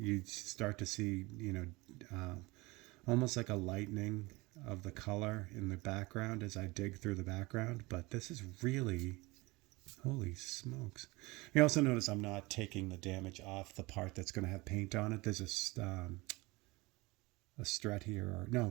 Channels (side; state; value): left; quieter; 23.1 dB